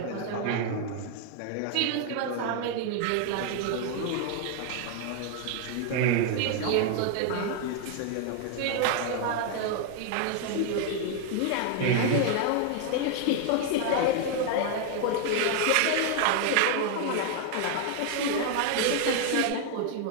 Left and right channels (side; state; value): both; different; correlation 0.00